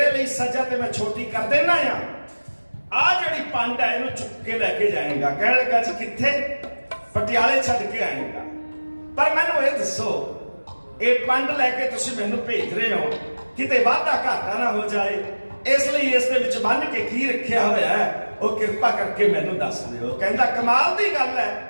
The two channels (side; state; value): both; inverted; correlation -1.00